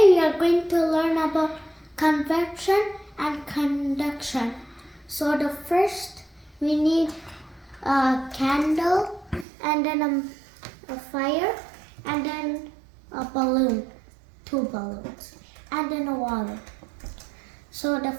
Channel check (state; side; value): drops out; left; at 9.5 s